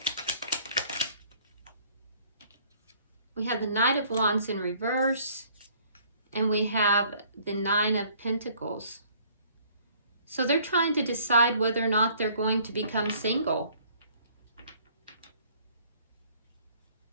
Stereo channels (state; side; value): inverted; both; correlation -0.58